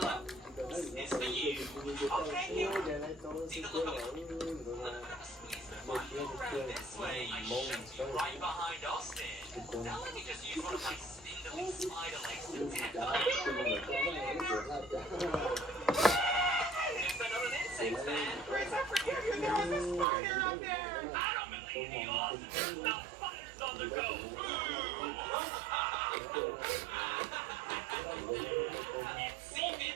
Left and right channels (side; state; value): left; drops out; at 20.1 s